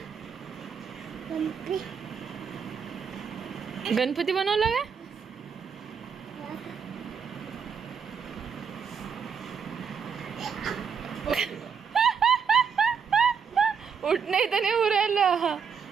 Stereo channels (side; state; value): left; quieter; 6.6 dB